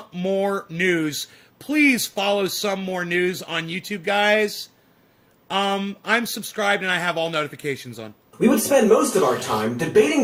More News. Please follow Some More News on YouTube, guys. I'm subscribed and I have all notifications on. We would spend most of our time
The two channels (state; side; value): identical; both; correlation 1.00